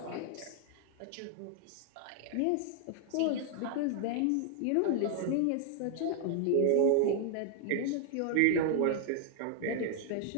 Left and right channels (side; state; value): both; different; correlation 0.00